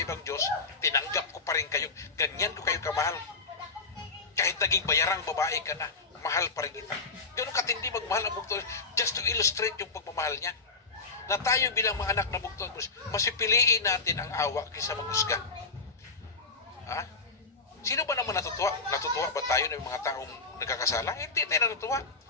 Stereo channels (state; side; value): quieter; right; 4.1 dB